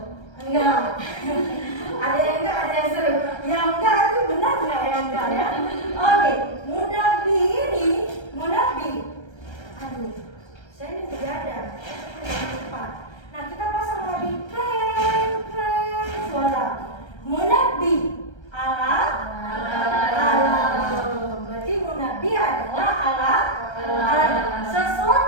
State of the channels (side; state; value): right; late; 1.3 ms